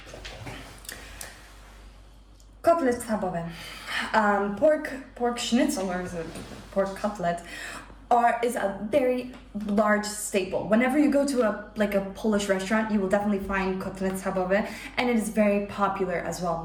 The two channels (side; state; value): both; identical; correlation 1.00